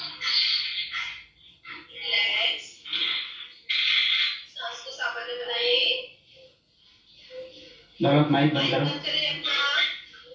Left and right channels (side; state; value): both; identical; correlation 1.00